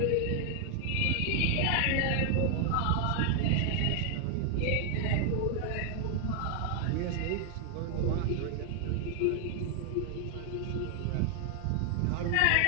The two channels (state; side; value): different; both; correlation 0.00